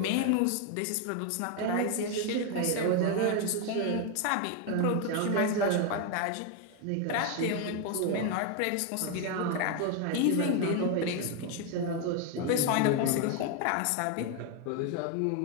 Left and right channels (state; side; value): different; both; correlation 0.01